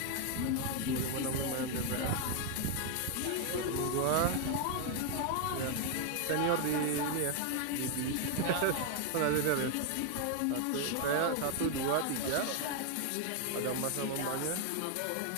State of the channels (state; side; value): different; both; correlation 0.01